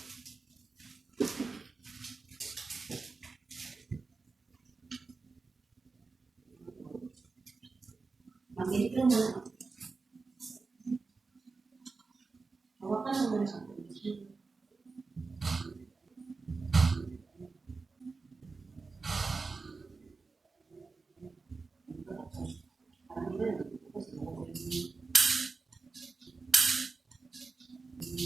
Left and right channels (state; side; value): quieter; left; 4.2 dB